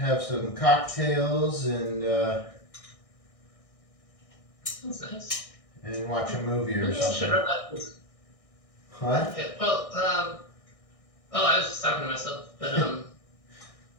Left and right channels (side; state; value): right; late; 1.6 ms